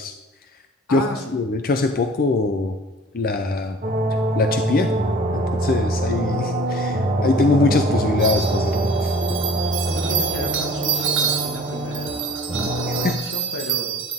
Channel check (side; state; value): both; normal; correlation 0.48